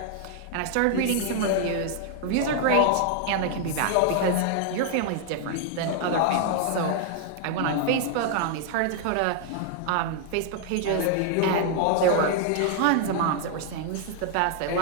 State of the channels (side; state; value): both; different; correlation -0.01